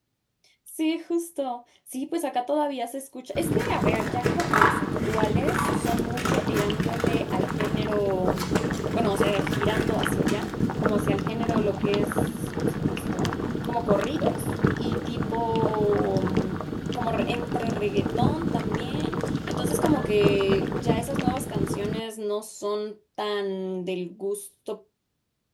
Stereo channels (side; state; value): both; identical; correlation 1.00